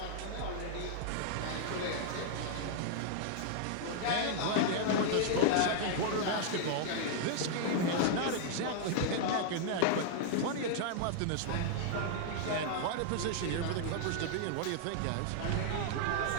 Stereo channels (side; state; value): both; different; correlation -0.01